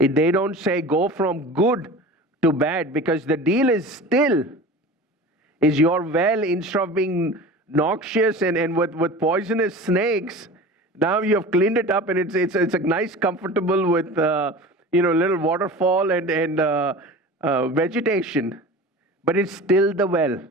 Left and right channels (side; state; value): both; normal; correlation 0.36